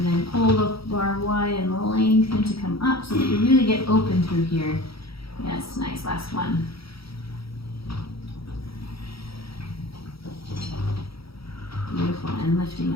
then pull the bar wide and lengthen to come up so that you really get open through here. Yes, nice, last one. Beautiful, and lifting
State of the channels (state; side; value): late; right; 0.75 ms